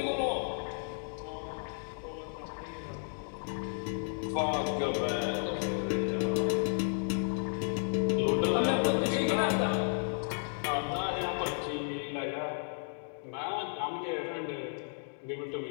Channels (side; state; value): right; silent; digital silence